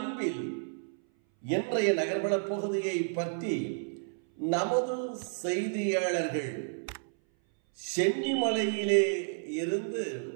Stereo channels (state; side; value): silent; left; 57 dB below the other